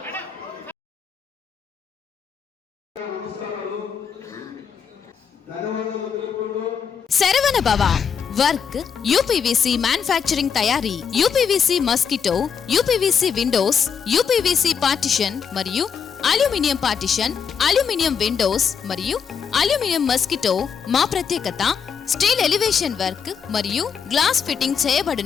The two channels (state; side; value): quieter; right; 6.9 dB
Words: Saravana భవ work UPVC manufacturing తయారీ, UPVC mosquito, UPVC Windows, UPVC partition మరియు aluminium partition, aluminium Windows మరియు aluminium mosquito. మా ప్రత్యేకత steel elevation work మరియు glass fitting